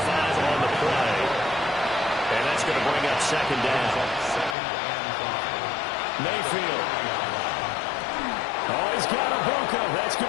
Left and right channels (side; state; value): right; drops out; at 4.5 s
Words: on the play. And that's going to bring up second down. Mayfield. Oh, he's got a Buka. That's